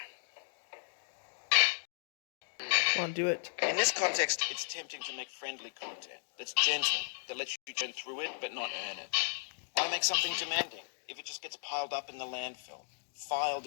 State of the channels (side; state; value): right; silent; digital silence